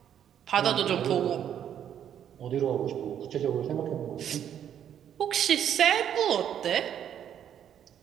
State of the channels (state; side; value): quieter; left; 9.6 dB